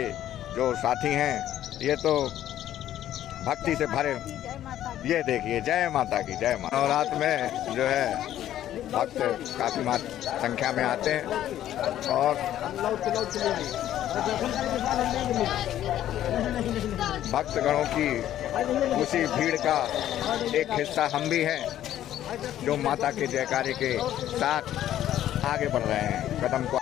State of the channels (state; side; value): quieter; right; 12.1 dB